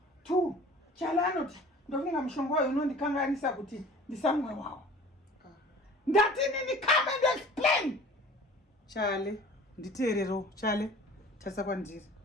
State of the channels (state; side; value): normal; both; correlation 0.45